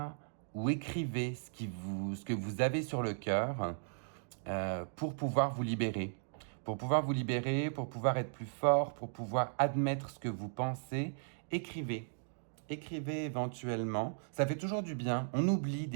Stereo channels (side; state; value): left; silent; digital silence